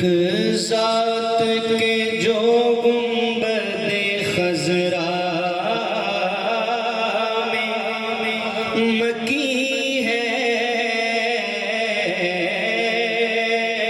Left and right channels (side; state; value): both; identical; correlation 1.00